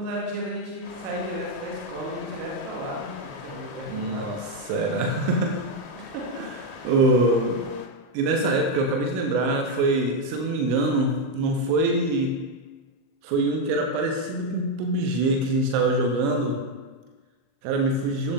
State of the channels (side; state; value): left; late; 38 ms